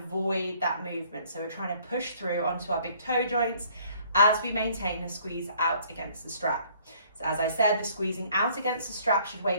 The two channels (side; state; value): both; inverted; correlation -0.59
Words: that movement. So we're trying to push through onto our big toe joints as we maintain the squeeze out against the strap. So as I said, the squeezing out against the strap should